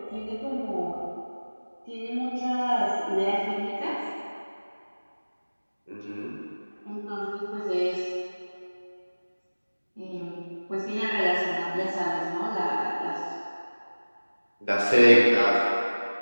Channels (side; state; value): both; inverted; correlation -1.00